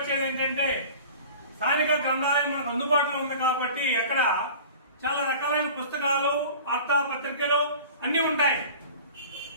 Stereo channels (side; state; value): both; inverted; correlation -0.41